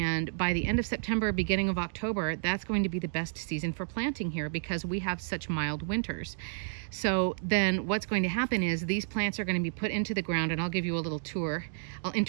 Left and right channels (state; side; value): silent; left; digital silence